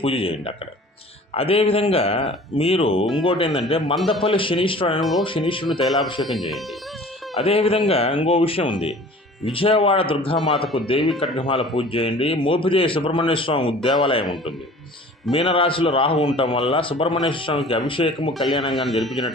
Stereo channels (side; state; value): both; normal; correlation 0.45